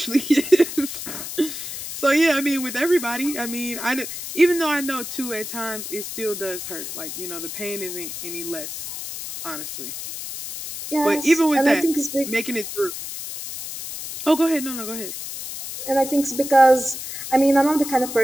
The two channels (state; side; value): noise; left; hiss, 8 dB below the sound